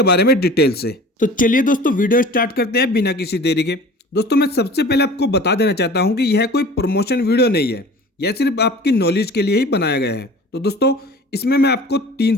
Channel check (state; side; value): normal; both; correlation 0.42